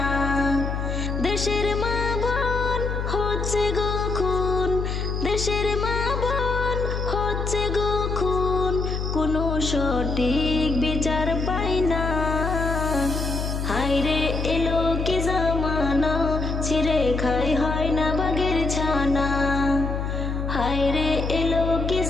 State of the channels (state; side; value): noise; left; hum, 2 dB below the sound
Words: দেশের মা বোন হচ্ছে গো খুন, দেশের মা বোন হচ্ছে গো খুন, কোনো সঠিক বিচার পাই না। হায়রে এলো কি জামানা, ছিঁড়ে খাই হয় না বাগের ছানা। হায়রে এলো কি